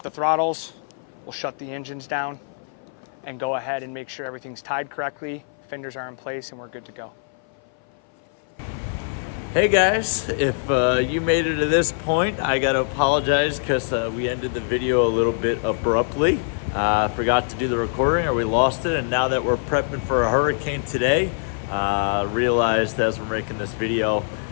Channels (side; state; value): right; silent; 58 dB below the other